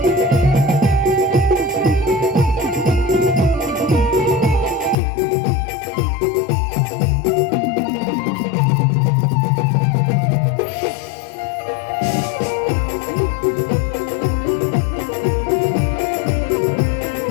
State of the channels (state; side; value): drops out; right; at 5.0 s